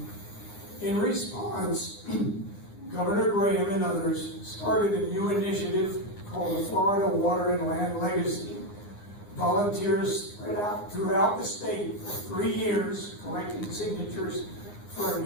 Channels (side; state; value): right; late; 9.7 ms